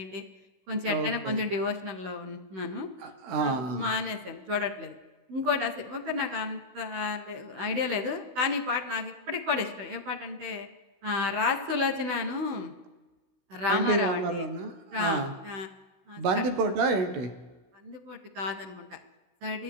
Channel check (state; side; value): late; left; 16 ms